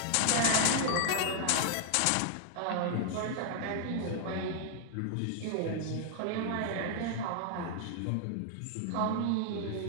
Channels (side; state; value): both; different; correlation 0.00